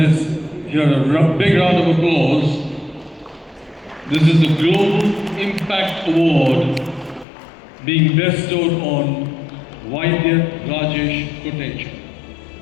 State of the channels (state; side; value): drops out; right; at 7.2 s